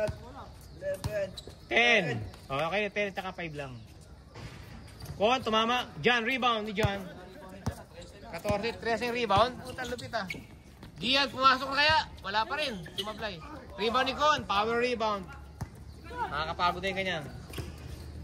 11. 10. Okay, 10 at 5 lang. Kon, tumama. John, rebound ni John. 14, 13 rebound. Puta, lupit ah. Gian, pumasok na kaya? Wala pa rin. Sumablay. Rebound ni Kon. Power rebound. Nakakapagod din kanya.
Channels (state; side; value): identical; both; correlation 1.00